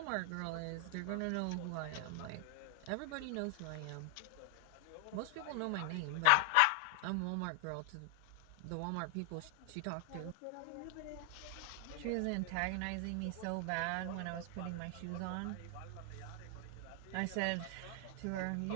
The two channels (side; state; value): both; different; correlation 0.00